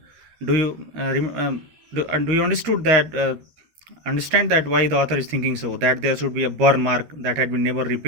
Do you do you understand that why the author is thinking so, that there should be a burn mark that had been never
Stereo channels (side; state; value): left; late; 13 ms